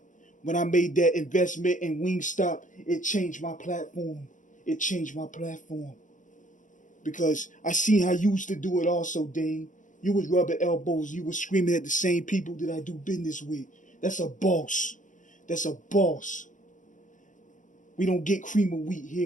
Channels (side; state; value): right; late; 0.37 ms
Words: When I made that investment in Wingstop, it changed my platform. It changed my platform. Because I seen how you used to do it also, Dane. You was rubbing elbows. You was screaming at the same people that I do business with. That's a boss. That's a boss. We don't get cream of wheat